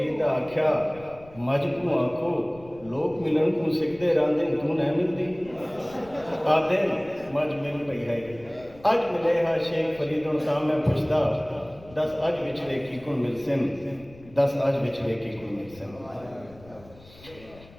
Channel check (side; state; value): left; noise; rumble, 22 dB below the sound